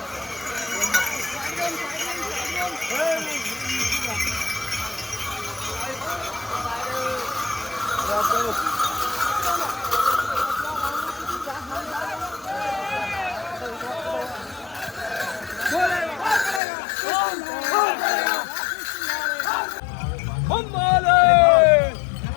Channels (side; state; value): right; drops out; at 16.6 s